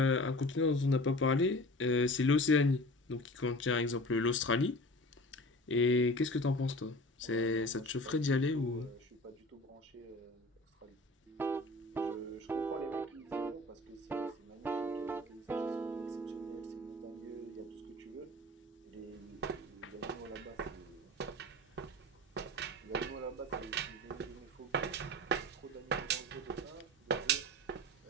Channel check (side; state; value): both; normal; correlation 0.39